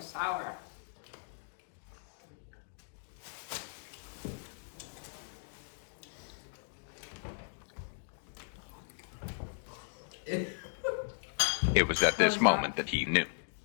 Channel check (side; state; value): right; silent; digital silence